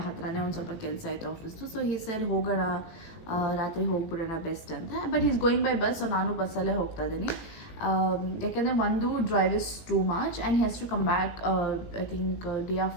ಹತ್ರನೇ ಒಂದು ಸ್ವಲ್ಪ ಕೆಲಸ ಆಯಿತು ಆಫೀಸ್ದು. ಸೊ ಹಿ ಸೆಡ್ ಹೋಗೋಣ, ರಾತ್ರಿ ಹೋಗ್ಬಿಡೋಣ ಬೆಸ್ಟ್ ಅಂತ. But is going by bus, so ನಾನು ಬಸ್ಸಲ್ಲೇ ಹೋಗ್ತಾ ಇದ್ದೀನಿ. ಯಾಕೆಂದರೆ ಒಂದು drive is too much and he has to come back I think day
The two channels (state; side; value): late; right; 18 ms